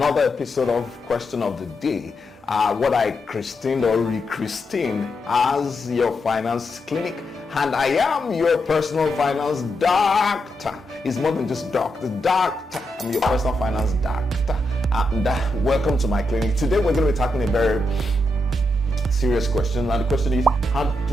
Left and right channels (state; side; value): normal; both; correlation 0.84